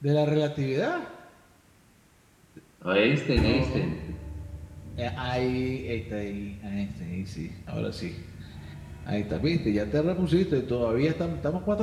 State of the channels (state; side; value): identical; both; correlation 1.00